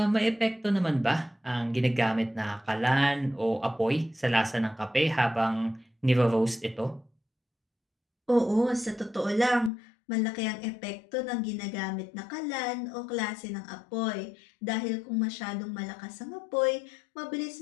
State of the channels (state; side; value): drops out; right; at 9.7 s